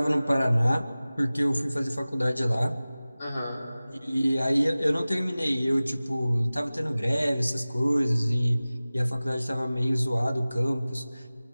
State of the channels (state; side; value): inverted; both; correlation -0.98